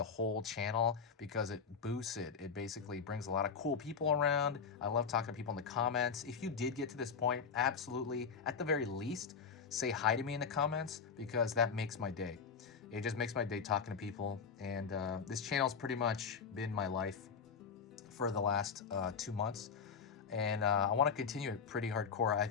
whole channel because it boosts it. It basically brings a lot of cool people around. I love talking to people in the comments. If you did get to this point, absolutely, at the very least, say hi to me in the comments because that makes my day. It just makes my day talking to people. And this channel's pretty much been my life for the last 2 months. And I want to continue it pretty hardcore. I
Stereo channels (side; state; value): right; quieter; 6.1 dB